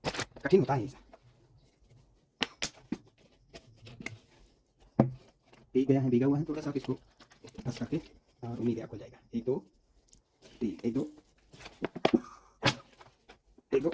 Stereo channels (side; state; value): both; identical; correlation 1.00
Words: कठिन होता है ये। भीगा हुआ है थोड़ा सा, इसको बस करके और उम्मीद है खुल जाएगा। 1 2 3, 1 2 1 2